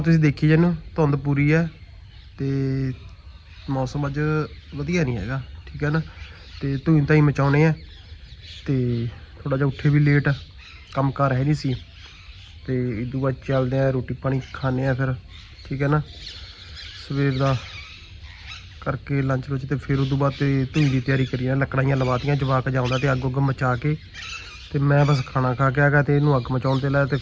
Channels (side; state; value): both; identical; correlation 1.00